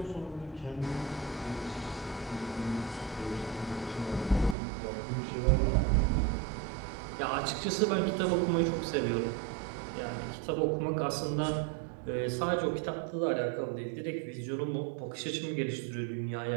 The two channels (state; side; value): drops out; left; at 4.5 s